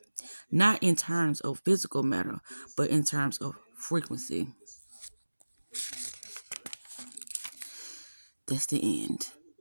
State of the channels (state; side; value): inverted; both; correlation -1.00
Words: not in terms of physical matter, but in terms of frequency. That's the end.